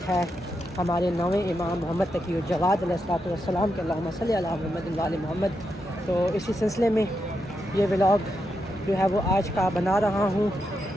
ہے ہمارے نویں امام محمد تقی الجواد علیہ السلام کے. اللہم صلی علی محمد و آل محمد. تو اسی سلسلے میں یہ ولاگ جو ہے وہ آج کا بنا رہا ہوں.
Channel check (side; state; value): both; normal; correlation 0.84